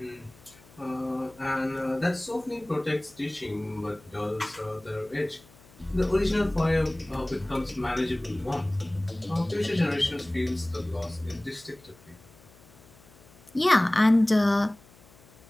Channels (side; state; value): left; noise; hum, 26 dB below the sound